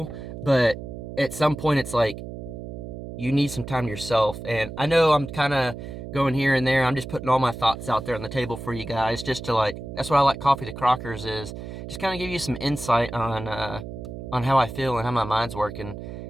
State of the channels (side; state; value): right; noise; hum, 10 dB below the sound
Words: but at some point it's like, you need some time to yourself. And I know I'm kind of going here and there. I'm just putting all my thoughts out there on the table for you guys, just to that's what I like Coffee to Crockers, is just kind of give you some insight on how I feel and how my mind's working.